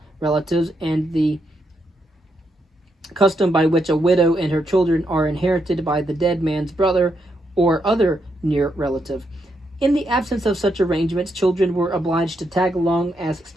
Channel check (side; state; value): both; normal; correlation 0.80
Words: relatives, and the custom by which a widow and her children are inherited by the dead man's brother or other near relative. In the absence of such arrangements, children were obliged to tag along as